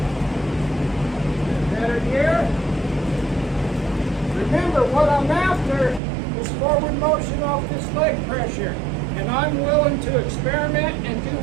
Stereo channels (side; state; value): left; drops out; at 6.0 s